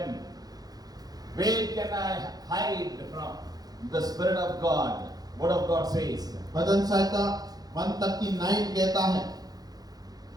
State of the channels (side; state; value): left; late; 0.19 ms